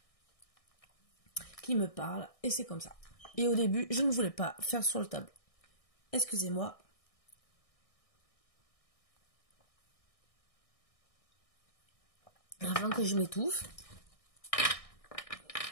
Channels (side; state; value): right; late; 1.6 ms